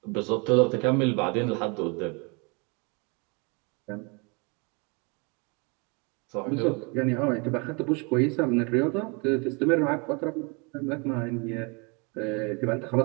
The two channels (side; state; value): left; quieter; 31.7 dB